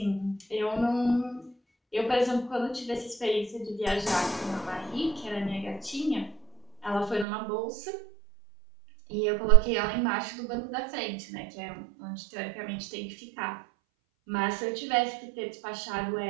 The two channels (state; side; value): drops out; left; at 7.2 s